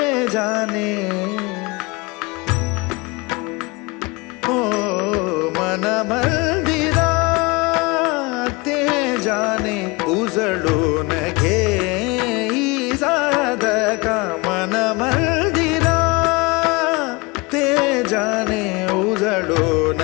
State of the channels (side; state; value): right; quieter; 25.6 dB